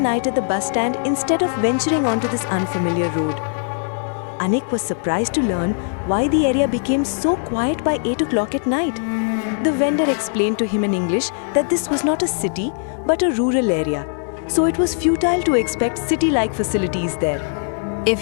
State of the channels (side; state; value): right; silent; digital silence